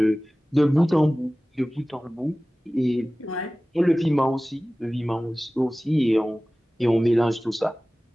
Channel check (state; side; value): normal; both; correlation 0.97